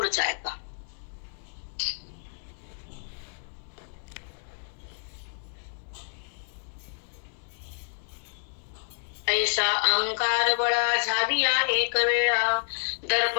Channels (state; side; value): silent; right; digital silence